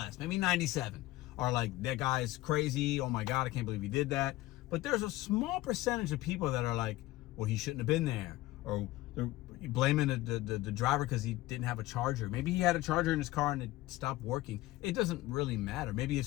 maybe 97, are like, that guy's crazy. Oh my God, I can't believe he did that. But there's a small percentage of people that are like, well, he shouldn't have been there, or they're blaming the driver because he didn't have a charger. Maybe he had a charger in his car and it stopped working. It doesn't really matter. Maybe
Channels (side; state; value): right; quieter; 17.4 dB